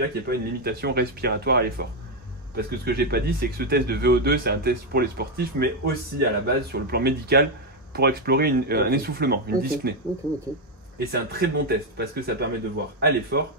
qu'il n'y a pas une limitation respiratoire à l'effort. Parce que ce que j'ai pas dit, c'est que ce test de VO2, c'est un test pour les sportifs, mais aussi à la base, sur le plan médical, pour explorer un essoufflement, une dyspnée. Et c'est un très bon test, parce que ça permet de voir à l'effort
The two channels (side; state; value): both; normal; correlation 0.05